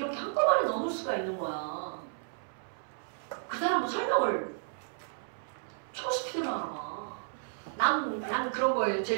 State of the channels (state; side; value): silent; left; 56 dB below the other